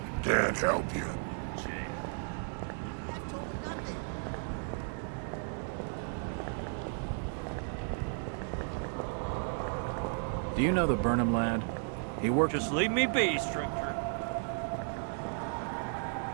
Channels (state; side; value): silent; left; 55 dB below the other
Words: Can't help you. Do you know the Burnham lad? He worked... Just leave me be, stranger.